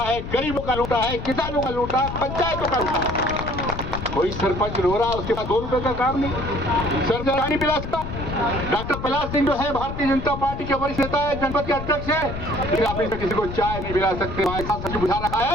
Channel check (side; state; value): left; noise; rumble, 7 dB below the sound